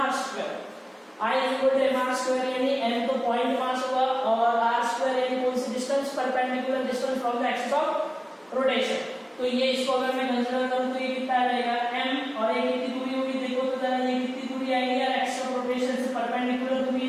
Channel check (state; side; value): identical; both; correlation 1.00